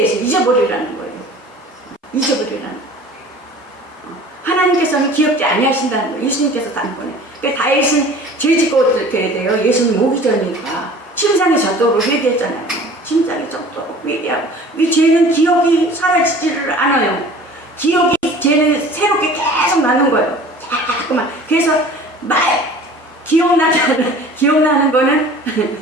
잊어버리라는 거예요. 잊어버리라는 거예요. 하나님께서는 기억지 아니하신다는 거예요. 예수님께서 단번에. 그러니까 다윗은 죄 짓고 어떻게 돼요? 예수님 오기 전이니까 침상에 젖도록 회개했잖아요. 침상에 젖도록 회개하고, 이 죄는 기억이 사라지지를 않아요. 죄는 새롭게 계속 나는 거예요. 자꾸만. 그래서 기억나는 거는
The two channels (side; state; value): both; normal; correlation 0.45